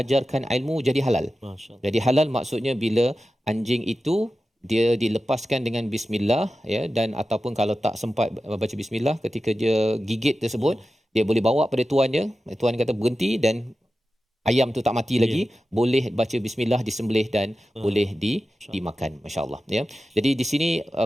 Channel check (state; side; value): normal; both; correlation 0.93